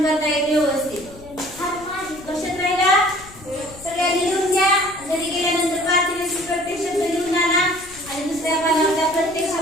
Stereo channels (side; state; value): left; noise; rumble, 20 dB below the sound